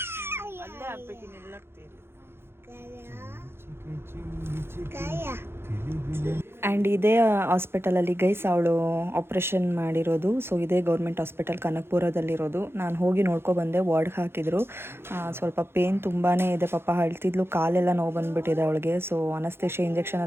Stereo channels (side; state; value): left; late; 0.11 ms